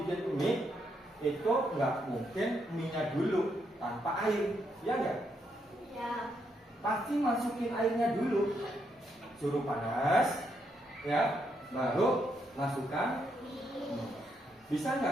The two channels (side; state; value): both; normal; correlation 0.78